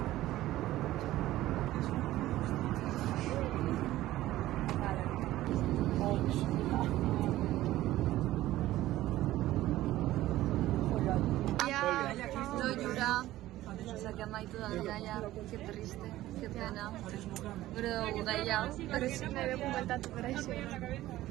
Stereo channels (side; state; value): left; quieter; 15.4 dB